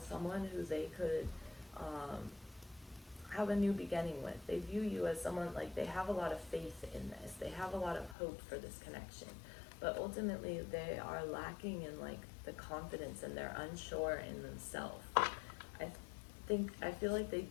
someone who they could have a new beginning with. They view you as someone, like, they have a lot of faith in this. They have a lot of hope for this connection. But ultimately, they are lacking in, like, the confidence, and they're unsure in themselves. I feel like they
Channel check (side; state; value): right; drops out; at 8.2 s